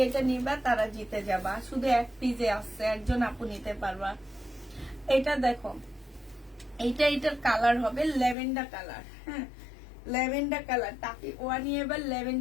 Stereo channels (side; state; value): right; drops out; at 8.3 s